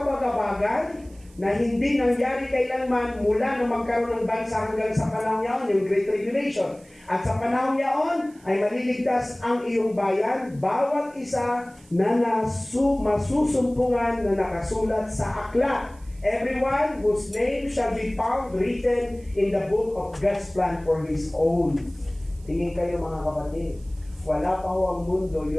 na hindi nangyari kailanman mula na magkaroon ng bansa hanggang sa panahon niyaon, yung Great Tribulation. At sa panahon niyaon ay maliligtas ang iyong bayan, bawat isa na masusumpungan na nakasulat sa aklat. Everyone whose name shall be found written in the book of God's plan for His own. Tingin kayo mga kapatid, wala pa ho ang mundo,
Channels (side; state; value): right; noise; hiss, 28 dB below the sound